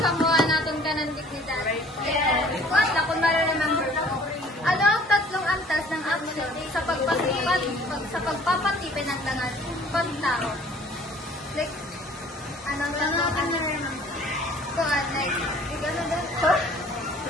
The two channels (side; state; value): both; normal; correlation 0.53